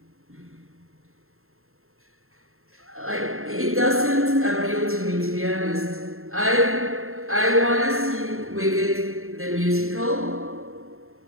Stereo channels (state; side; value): late; left; 0.62 ms